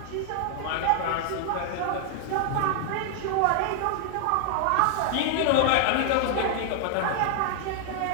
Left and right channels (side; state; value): both; different; correlation 0.00